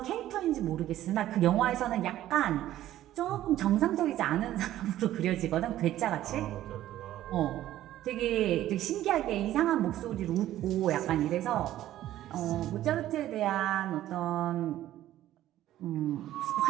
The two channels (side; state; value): left; quieter; 13.4 dB